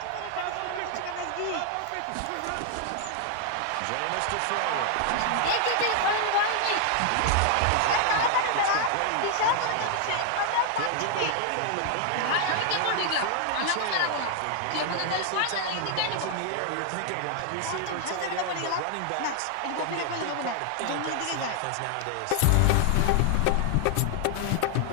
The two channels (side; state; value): both; different; correlation 0.00